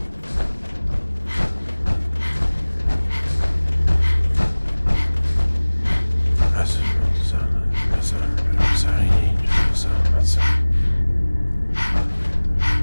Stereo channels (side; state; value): both; inverted; correlation -1.00